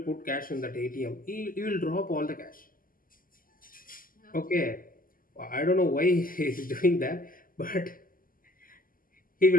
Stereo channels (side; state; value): right; late; 0.41 ms